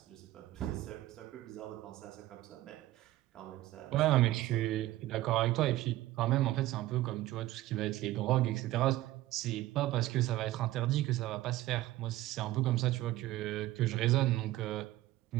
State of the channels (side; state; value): left; quieter; 16.1 dB